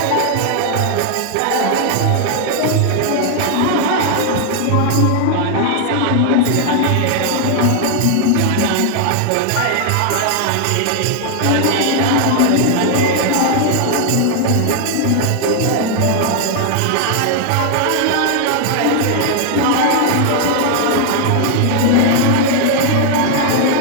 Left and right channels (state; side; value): different; both; correlation 0.00